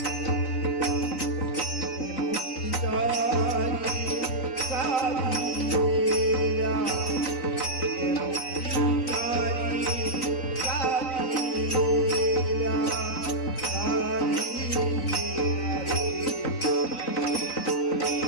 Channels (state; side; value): late; right; 3.9 ms